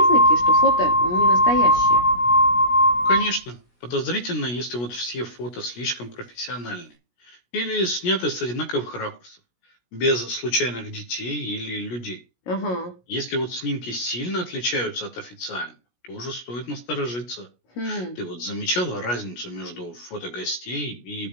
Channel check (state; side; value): late; right; 17 ms